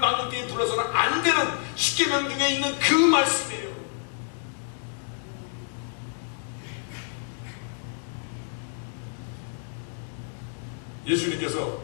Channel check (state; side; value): silent; right; digital silence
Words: 데에 불러서는 안 되는 십계명 중에 있는 그 말씀이에요. 예수님께서